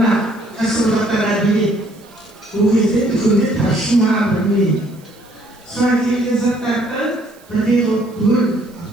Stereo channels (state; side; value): noise; right; hiss, 28 dB below the sound